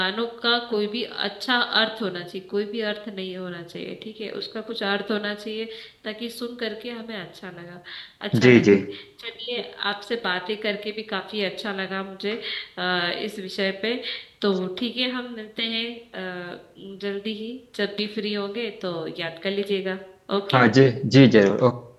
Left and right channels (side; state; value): both; identical; correlation 1.00